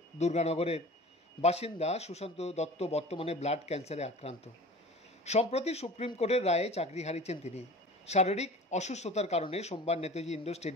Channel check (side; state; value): both; normal; correlation 0.40